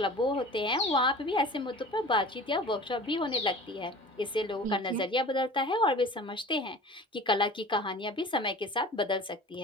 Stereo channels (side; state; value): both; normal; correlation 0.41